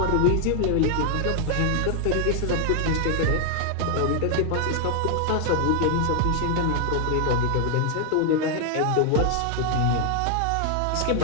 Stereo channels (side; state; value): both; different; correlation 0.00